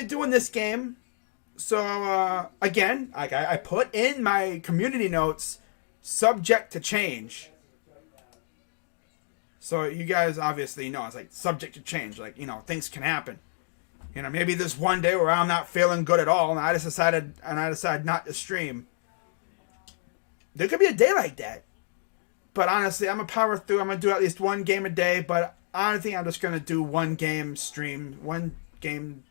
doing this game. So, again, I put in my community notes, subject to change. So you guys obviously know it's like subject to change. Like, things can happen. Maybe there's one day where I'm not feeling good at all and I decide not to stream. There could be a day like that. But honestly, I'm going to power through. I'm going to do at least one game a day. But I think I'm just going to do one game stream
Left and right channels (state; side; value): silent; right; 57 dB below the other